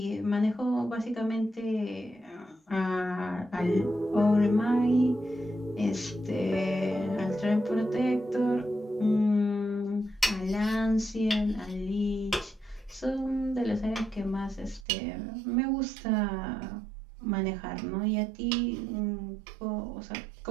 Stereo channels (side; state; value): left; drops out; at 14.9 s